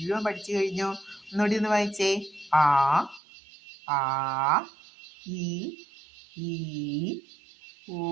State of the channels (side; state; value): left; drops out; at 3.2 s